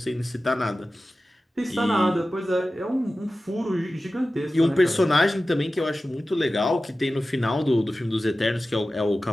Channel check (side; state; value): both; normal; correlation 0.95